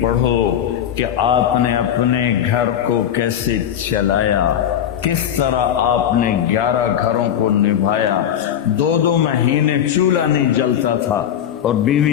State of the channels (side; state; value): right; quieter; 9.9 dB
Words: کہ آپ نے اپنے گھر کو کیسے چلایا، کس طرح آپ نے 11 گھروں کو نبھایا، 2 مہینے چولہا نہیں جلتا تھا اور